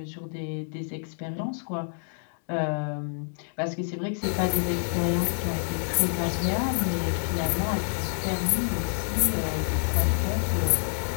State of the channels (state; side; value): silent; right; digital silence